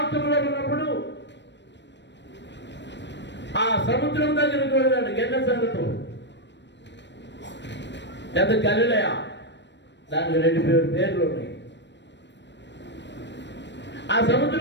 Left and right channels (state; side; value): late; right; 0.52 ms